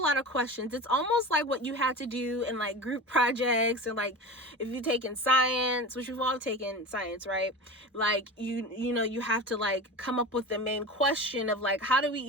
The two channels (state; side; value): normal; both; correlation 0.31